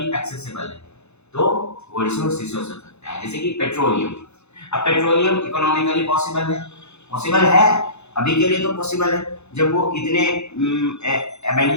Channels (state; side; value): late; right; 0.81 ms